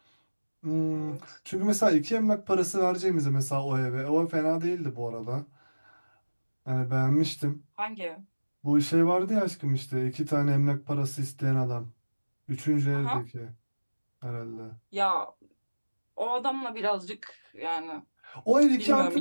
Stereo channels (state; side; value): inverted; both; correlation -1.00